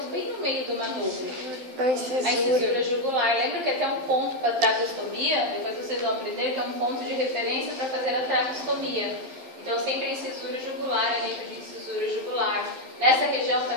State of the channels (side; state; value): left; late; 12 ms